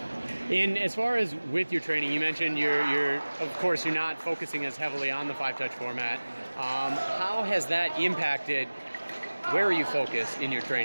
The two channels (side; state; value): both; inverted; correlation -1.00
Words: And as far as with your training, you mentioned of course, you're not focusing as heavily on the 5-touch format. How has that impacted where you focus in your